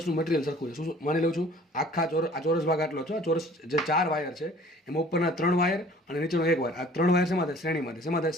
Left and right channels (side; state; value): both; normal; correlation 0.51